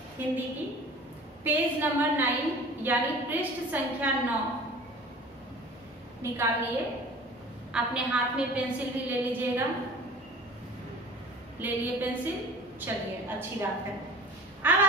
हिंदी की, पेज नंबर 9 यानी पृष्ठ संख्या 9 निकाल लिए। अपने हाथ में पेंसिल भी ले लीजिएगा। ले लिए पेंसिल? चलिए, अच्छी बात है। अब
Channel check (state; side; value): normal; both; correlation 0.41